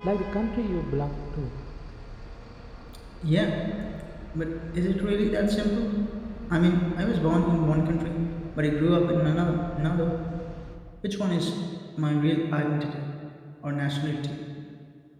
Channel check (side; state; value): both; identical; correlation 1.00